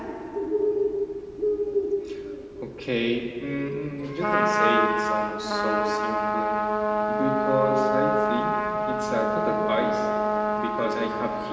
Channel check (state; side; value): identical; both; correlation 1.00